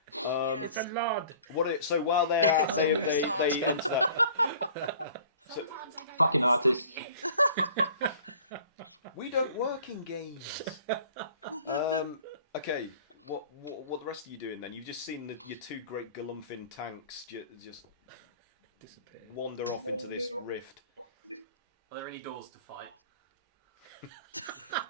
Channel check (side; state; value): both; inverted; correlation -0.49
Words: It's a lod. So while they're out, they enter that. So, Sometimes I don't Fucking artist. we don't work in games. Okay, what the rest of you doing then? You've just seen your two great Galumfin tanks just Disappear. wander off into this rift. Are there any doors to fight?